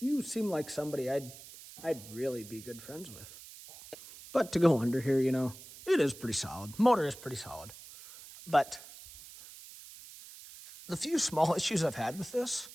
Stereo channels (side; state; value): right; noise; hiss, 17 dB below the sound